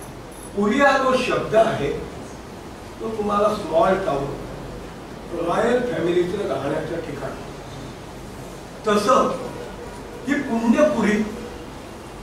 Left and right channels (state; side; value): identical; both; correlation 1.00